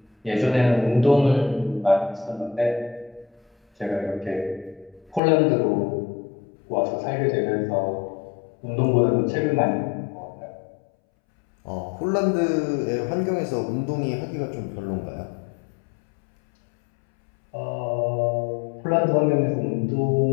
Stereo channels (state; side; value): drops out; right; at 5.2 s